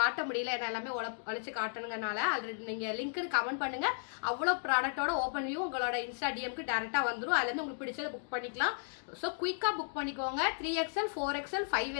முடியல, என்ன எல்லாமே உழைச்சி காட்டணுங்கனால. ஆல்ரெடி நீங்கள் லிங்க்கு கமெண்ட் பண்ணுங்கள். அவ்வளோ ப்ராடக்டோட ஓப்பன் வியூ உங்களோட இன்ஸ்டா டிஎம்க்கு டேரெக்டாக வந்துடும். அதுலேருந்து உங்களுக்கு பிடிச்சதை புக் பண்ணிக்கலாம். ஸோ குயிக்காக புக் பண்ணிக்கோங்க. 3XL 4XL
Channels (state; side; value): silent; right; digital silence